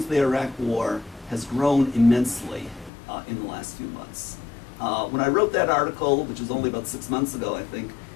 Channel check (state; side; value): drops out; right; at 2.9 s